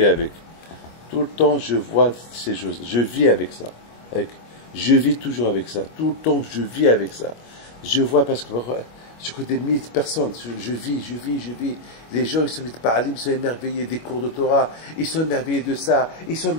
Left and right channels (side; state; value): right; late; 25 ms